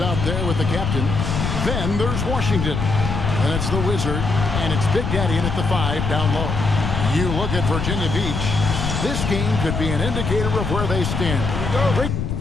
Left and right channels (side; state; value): left; noise; rumble, 2 dB below the sound